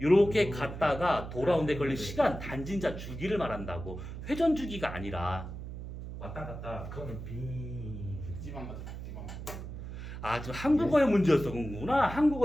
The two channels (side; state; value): right; noise; hum, 9 dB below the sound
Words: 갔다가 돌아오는데 걸리는 시간 단진자 주기를 말한다고. 회전 주기가 아니라. 왔다 갔다. 그거는 비. 극지방 가자. 극지방. 아, 저 한국어의 문제였구나.